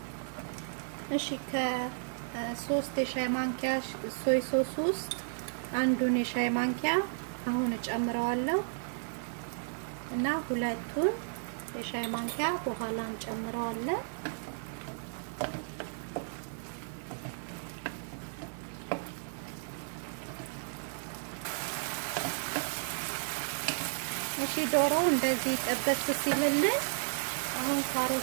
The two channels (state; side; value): silent; left; 55 dB below the other